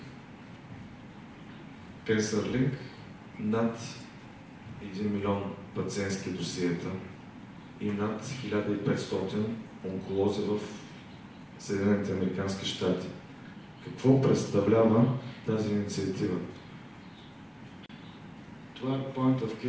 CancerLink над 1 милион пациентски досиета и над 1500 онколози в Съединените американски щати. Какво представлява тази инициатива? Това е Point of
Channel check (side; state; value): both; identical; correlation 1.00